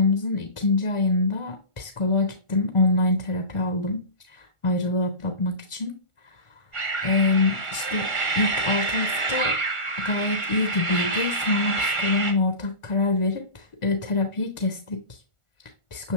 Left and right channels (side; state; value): right; late; 1.4 ms